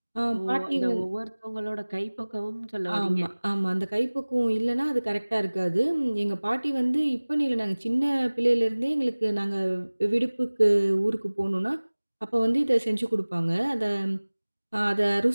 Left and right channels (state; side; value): inverted; both; correlation -1.00